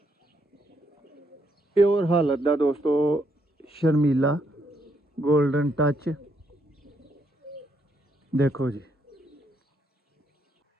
प्योर हालत दा दोस्तों शर्मीला गोल्डन टच देखो जी।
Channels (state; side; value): normal; both; correlation 0.75